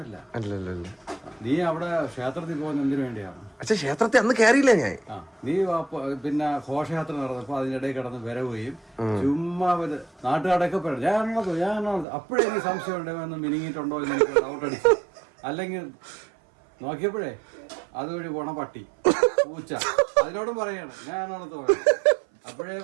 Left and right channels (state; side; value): drops out; left; at 12.1 s